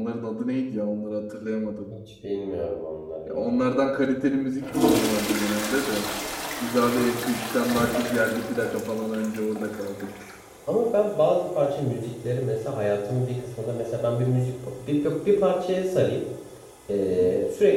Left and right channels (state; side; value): identical; both; correlation 1.00